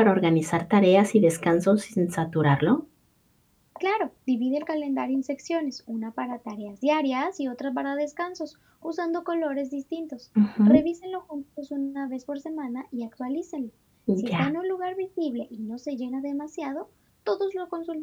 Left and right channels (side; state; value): both; identical; correlation 1.00